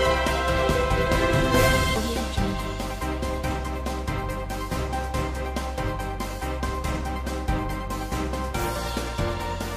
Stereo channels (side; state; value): both; identical; correlation 1.00